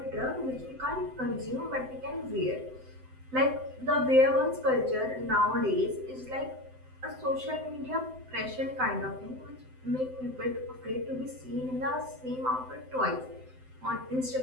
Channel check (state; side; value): late; left; 7.8 ms